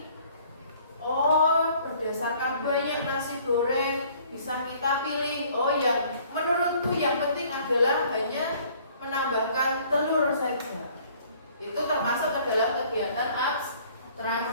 Oh, berdasarkan banyak nasi goreng bisa kita pilih. Oh, yang menurutku yang penting adalah hanya menambahkan telur saja. Itu termasuk adalah kegiatan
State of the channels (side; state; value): both; inverted; correlation -0.57